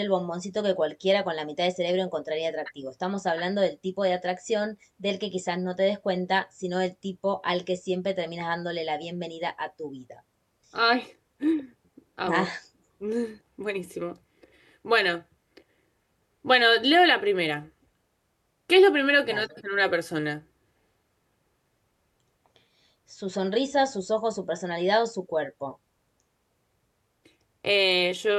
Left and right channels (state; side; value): identical; both; correlation 1.00